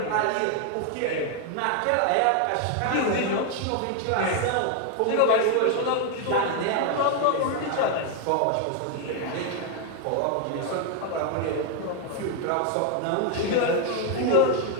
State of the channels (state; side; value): different; both; correlation 0.01